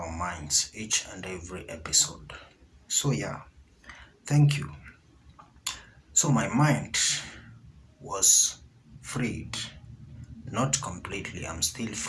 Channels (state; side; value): identical; both; correlation 1.00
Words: minds each and every episode. So yeah, thank you. So my mind was freed, not completely, I'm still